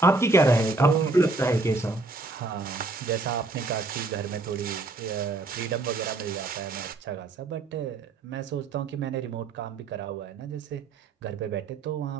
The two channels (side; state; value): left; quieter; 3.3 dB